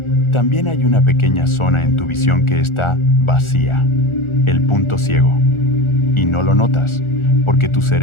También hay una pequeña zona en tu visión que está vacía, el punto ciego. Y no lo notas, porque tu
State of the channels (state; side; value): late; right; 1.4 ms